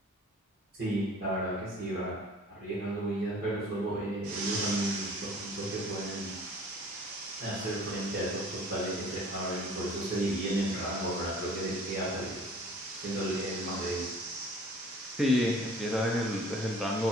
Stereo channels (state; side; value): normal; both; correlation 0.49